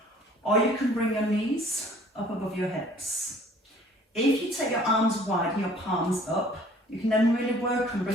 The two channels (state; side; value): normal; both; correlation 0.54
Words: Or you can bring your knees up above your hips. If you take your arms wide and your palms up, you can then really work on